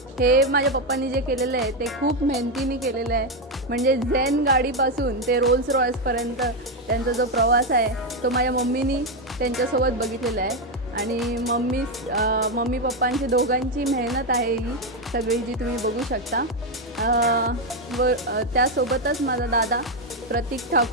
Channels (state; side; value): normal; both; correlation 0.06